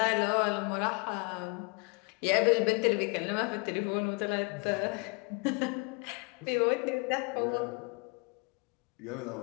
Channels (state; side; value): quieter; right; 32.0 dB